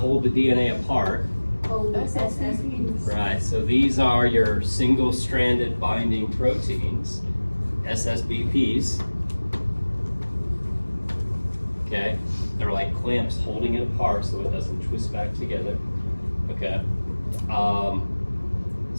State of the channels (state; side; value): inverted; both; correlation -1.00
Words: the DNA apart. Oh, SSBPs. Right, so these are your single-stranded binding proteins, SSBPs. Okay, they're like clamps holding it apart so it doesn't twist back together. Okay,